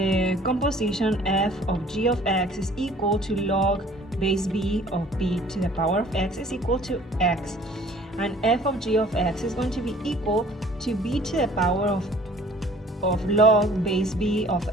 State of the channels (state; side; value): normal; both; correlation 0.53